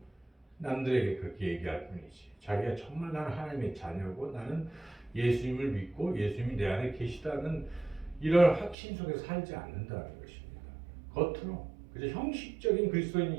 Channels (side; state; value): left; drops out; at 8.8 s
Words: 남들에게 그렇게 얘기할 뿐이지. 자기가 정말 나는 하나님의 자녀고 나는 예수님을 믿고 예수님이 내 안에 계시다는 이런 확신 속에 살지 않는다는 것입니다. 겉으로. 그래서 형식적인 그리스도인이